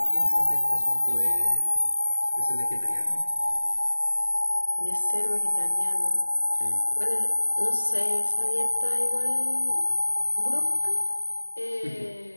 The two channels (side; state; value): both; inverted; correlation -1.00